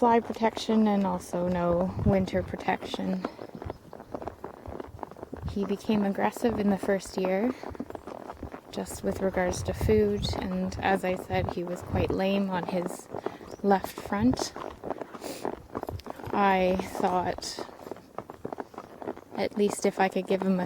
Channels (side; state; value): both; identical; correlation 1.00